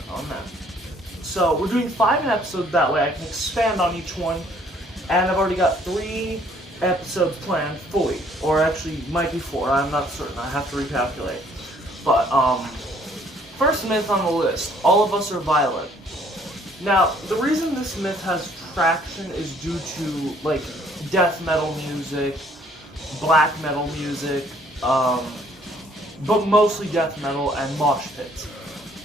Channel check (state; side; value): normal; both; correlation 0.61